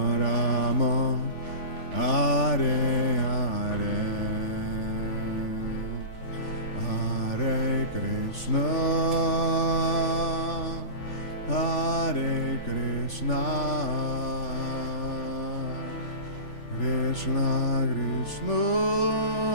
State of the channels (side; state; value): right; late; 3.4 ms